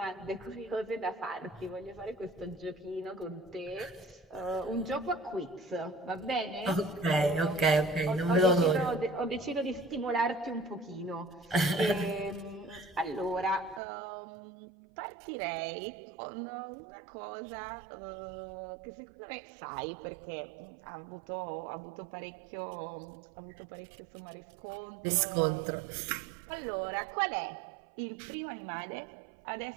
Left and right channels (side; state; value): left; drops out; at 13.8 s